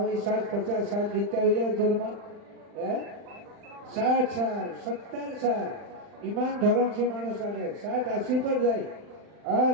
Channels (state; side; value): late; left; 39 ms